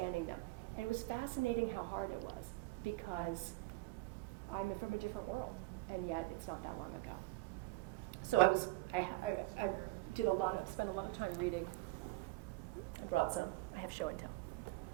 them. And it was fascinating how hard it was, because I'm from a different world, and yet it's not that long ago. So I spent a lot of time reading. I brought some. I have show and tell.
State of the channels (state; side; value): quieter; left; 20.5 dB